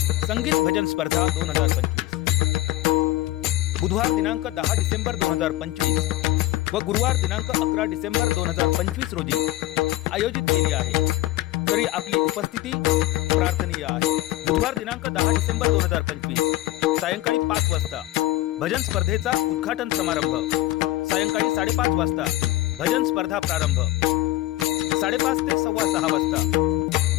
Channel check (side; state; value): right; quieter; 16.8 dB